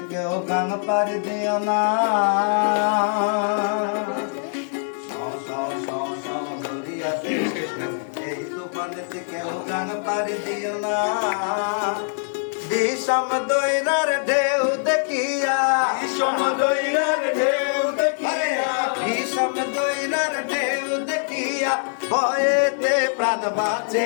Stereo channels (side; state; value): right; silent; 63 dB below the other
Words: কেউ গান পাড়ি দিও না। সাও সাও সাও সাও দরিয়াতে ওঠে ঢেউ, এই তুফানেতে কেউ গান পাড়ি দিও না। বিষম দৈরার ঢেউ দেখিয়া, বিষম দৈরার ঢেউ দেখিয়া, বিষম দৈরার ঢেউ দেখিয়া ভয়েতে প্রাণ